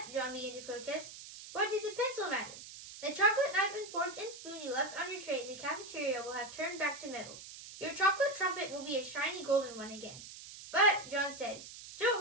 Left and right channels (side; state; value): right; noise; hiss, 14 dB below the sound